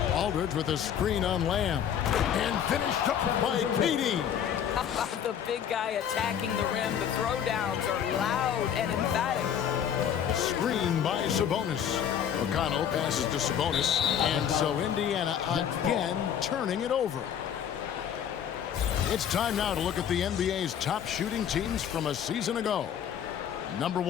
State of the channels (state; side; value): quieter; right; 9.0 dB